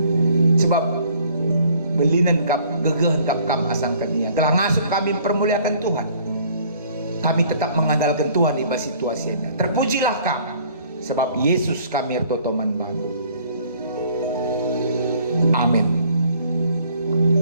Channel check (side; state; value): both; inverted; correlation -0.58